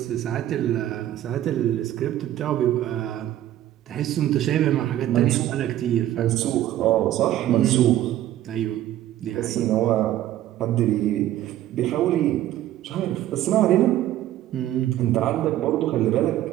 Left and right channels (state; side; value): quieter; left; 13.1 dB